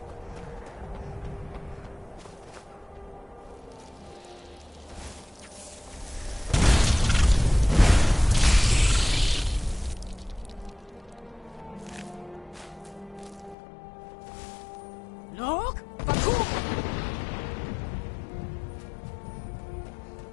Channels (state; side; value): drops out; right; at 13.6 s